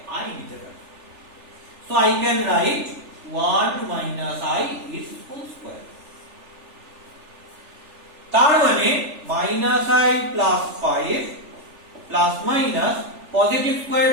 i নিতে পারি। So I can write 1 - i is whole square। তার মানে -i plus 5 plus minus positive square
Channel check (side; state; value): left; late; 3.4 ms